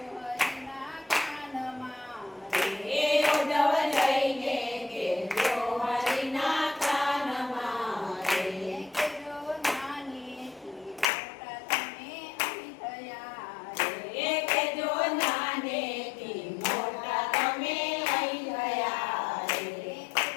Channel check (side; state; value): right; drops out; at 11.1 s